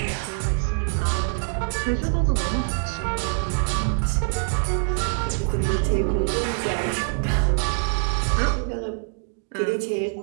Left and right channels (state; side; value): silent; left; 60 dB below the other